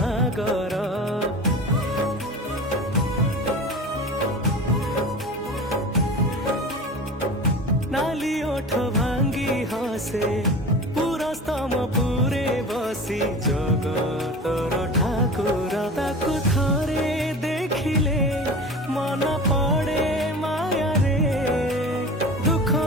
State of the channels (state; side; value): normal; both; correlation 0.35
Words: नाली ओठ भांगी हसे पुरस्तम पुरे बसी जगतर ठाकुर ताकु थरे देखिले मन पड़े माया रे दुख